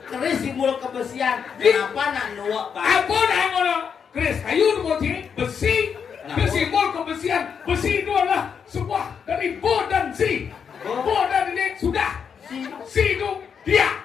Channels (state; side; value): quieter; right; 6.9 dB